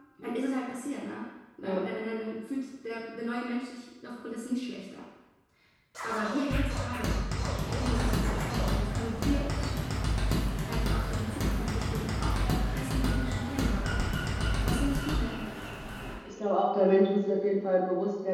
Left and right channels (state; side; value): identical; both; correlation 1.00